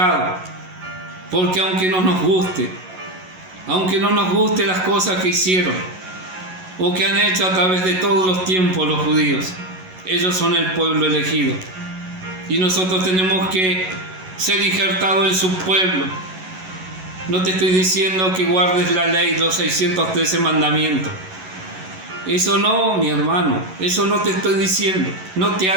porque aunque no nos guste las cosas que hicieron o que han hecho a través de todos los tiempos los judíos, ellos son el pueblo elegido y nosotros tenemos que ser injertados en su pueblo. No te estoy diciendo que guardes la ley, los 613 mandamientos. Eso no, mi hermano, eso no te estoy diciendo. No te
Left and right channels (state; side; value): late; left; 11 ms